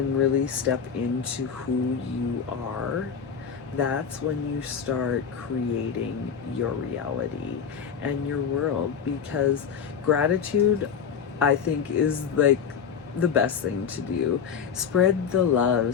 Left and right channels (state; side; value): quieter; right; 7.0 dB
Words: really step into who you are, that's when you start creating your reality and your world. Because gratitude, I think, is like the best thing to do. Spread the